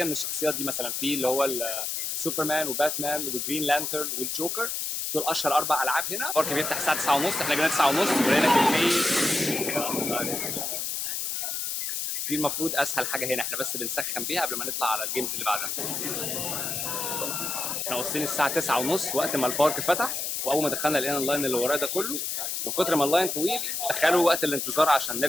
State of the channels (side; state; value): left; noise; hiss, 2 dB below the sound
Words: من الشخصيات دي. مثلا في اللي هو سوبرمان وباتمان وجرين لانترن والجوكر، دول اشهر 4 العاب هنا. البارك بيفتح الساعه 9:30، احنا جينا 9:30 ولقينا كميه. دي المفروض اسهل حاجه هنا، احنا بس بنسخن بيها قبل ما نطلع على الجيمز اللي بعدها. احنا واصلين الساعه 9:30 وقت ما البارك فتح، واول ما دخلنا لقينا اللاين اللي وراه ده كله. من كتر ما اللاين طويل تخيلوا وقت الانتظار عشان